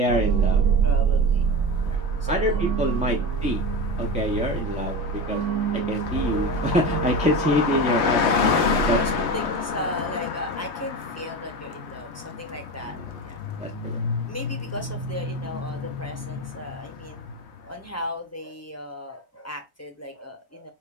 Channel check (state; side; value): normal; both; correlation 0.25